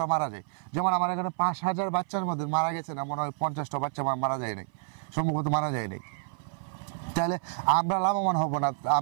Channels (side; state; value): left; silent; 57 dB below the other